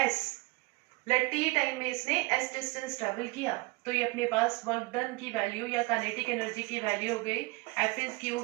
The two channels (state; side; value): quieter; left; 24.8 dB